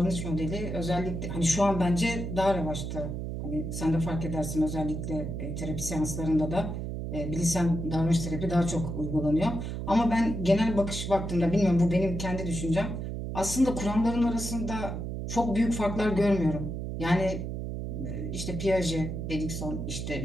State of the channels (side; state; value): right; noise; hum, 5 dB below the sound